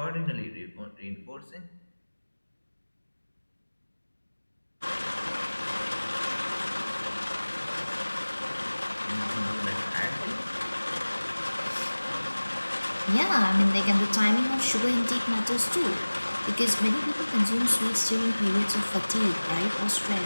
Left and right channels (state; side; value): inverted; both; correlation -1.00